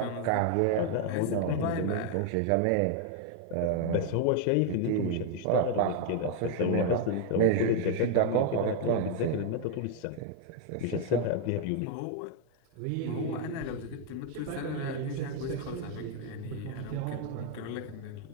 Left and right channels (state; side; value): different; both; correlation 0.00